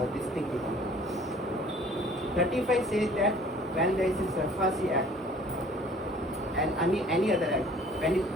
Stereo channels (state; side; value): normal; both; correlation 0.52